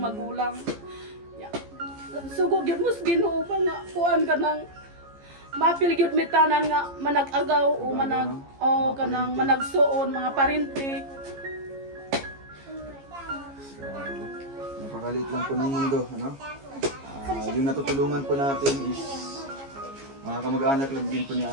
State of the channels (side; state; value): left; late; 15 ms